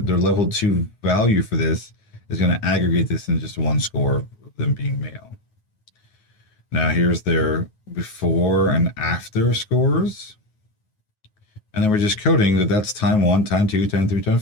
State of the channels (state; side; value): late; right; 9.4 ms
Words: level 2 value for this is going to aggregate this in just one score of them being male. Now here's their before and after scores. And then we're just coding that that's time 1, time 2, time 3, time